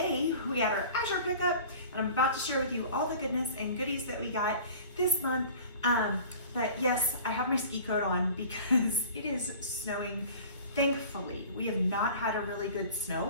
we had our Azure pickup, and I'm about to share with you all the goodness and goodies that we got this month. But yes, I have my ski coat on because it is snowing. Thankfully, we have not had a really good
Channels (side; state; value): both; inverted; correlation -0.43